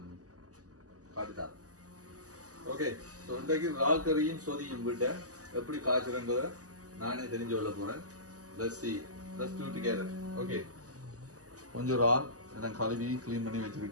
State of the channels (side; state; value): left; late; 0.67 ms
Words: காட்டுத்தார். ஓகே, ஸோ இன்றைக்கு இறால் கறியும் சொதியும் விட்ட எப்படி காய்ச்சுறன்றதை நானே தெரிஞ்சு கொள்ள போறேன். Let's do together. ஓகே, கொஞ்சம் இறால் எல்லாம் கழுவி க்ளீன் பண்ணி